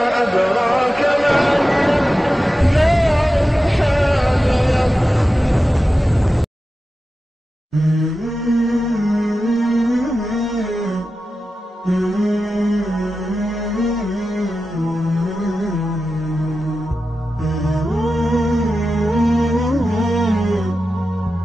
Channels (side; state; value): both; normal; correlation 0.93